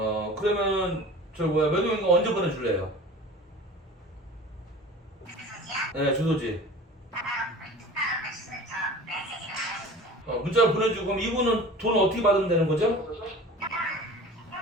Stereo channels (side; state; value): both; normal; correlation 0.39